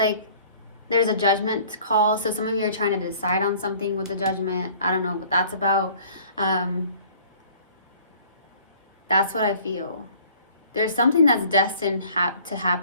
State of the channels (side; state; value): both; inverted; correlation -0.53